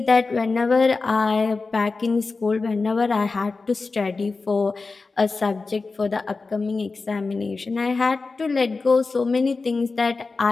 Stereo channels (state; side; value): quieter; right; 4.0 dB